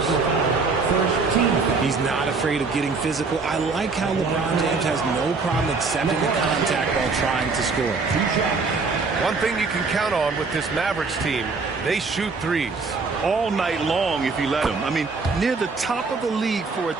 He's not afraid of getting physical. I like how LeBron James has no problem accepting the contact while trying to score. One thing you can count on with this Mavericks team, they shoot threes. All night long if you let them. I mean, near the top of the league for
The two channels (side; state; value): left; quieter; 4.3 dB